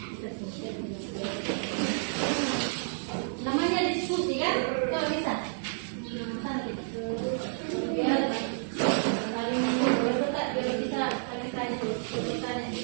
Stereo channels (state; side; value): silent; left; digital silence